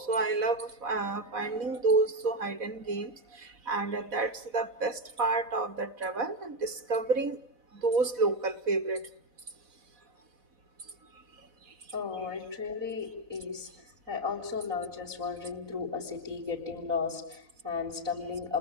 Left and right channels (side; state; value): left; late; 4.1 ms